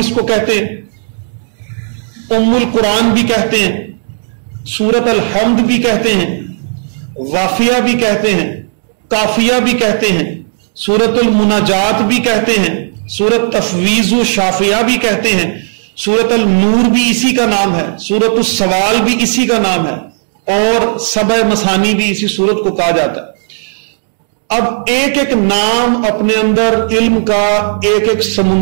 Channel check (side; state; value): left; silent; digital silence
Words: کو کہتے ہیں، ام القرآن بھی کہتے ہیں، سورۃ الحمد بھی کہتے ہیں، وافیہ بھی کہتے ہیں، کافیہ بھی کہتے ہیں، سورۃ المناجات بھی کہتے ہیں، سورۃ تفویض و شافیہ بھی کہتے ہیں، سورۃ النور بھی اسی کا نام ہے، سورۃ السوال بھی اسی کا نام ہے، اور سبع مثانی بھی اسی سورت کو کہا جاتا ہے. اب ایک ایک نام اپنے اندر علم کا ایک ایک